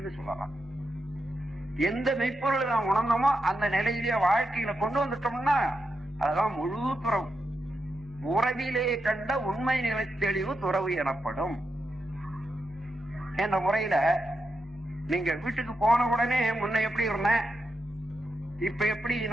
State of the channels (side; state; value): both; normal; correlation 0.85